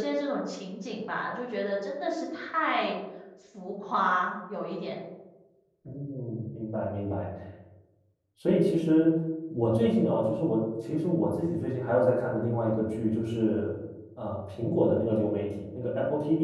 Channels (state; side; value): identical; both; correlation 1.00